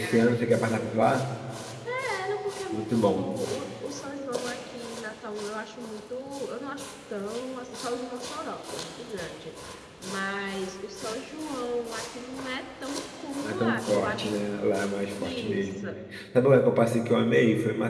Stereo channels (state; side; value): identical; both; correlation 1.00